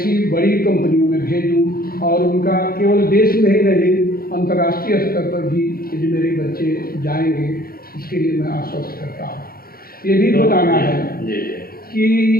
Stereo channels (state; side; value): late; right; 0.43 ms